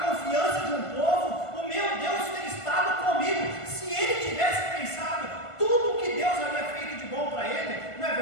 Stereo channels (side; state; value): right; late; 1.5 ms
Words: confiança de um povo, o meu Deus tem estado comigo. Se ele tivesse pensado tudo que Deus havia feito de bom para ele, não é